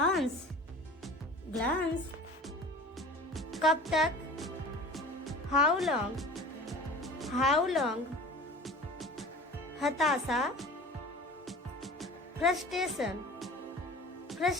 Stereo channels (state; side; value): normal; both; correlation 0.40